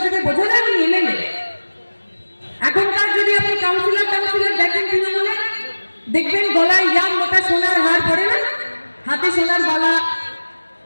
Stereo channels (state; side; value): inverted; both; correlation -1.00